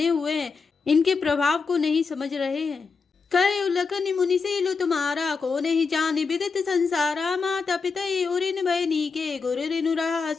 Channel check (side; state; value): right; quieter; 4.9 dB